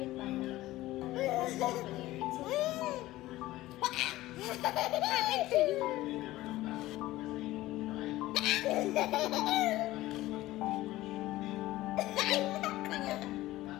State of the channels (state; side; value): quieter; right; 16.8 dB